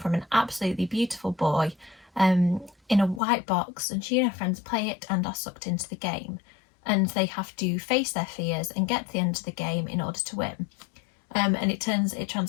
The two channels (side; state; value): right; drops out; at 3.2 s